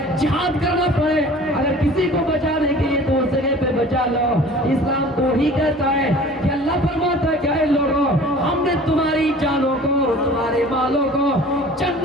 جہاد کرنا پڑے, اگر کسی کو بچانے کے لیے تو اس جگہ پہ بچا لو. اسلام تو ہی کہتا ہے کہ اللہ فرماتا ہے کہ اے لوگوں, ہم نے تمہاری جانوں کو, تمہارے مالوں کو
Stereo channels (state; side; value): normal; both; correlation 0.45